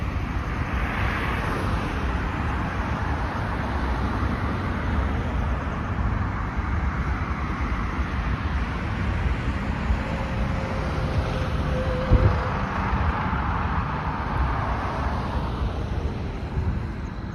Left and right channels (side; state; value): both; identical; correlation 1.00